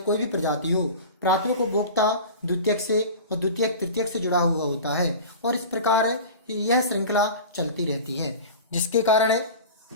भी प्रजाति हो प्राथमिक उपभोक्ता द्वितीयक से और द्वितीयक तृतीयक से जुड़ा हुआ होता है और इस प्रकार यह श्रृंखला चलती रहती है, जिसके कारण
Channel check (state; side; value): inverted; both; correlation -0.34